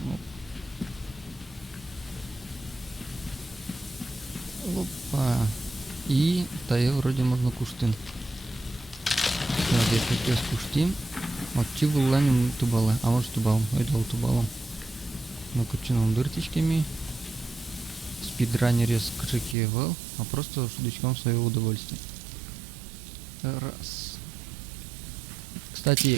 Опа. И тая вроде можно куштин. Так, если сейчас куштим. Вот чего ланим тубала. А может тубалом. Ойдал тубалом. Ну кучином дыртичками. Спидранере с качекевал. А просто шудочком своего удовольствия. Раз.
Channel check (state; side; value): drops out; left; at 19.6 s